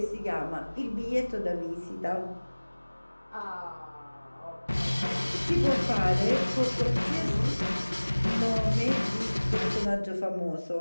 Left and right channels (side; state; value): both; inverted; correlation -1.00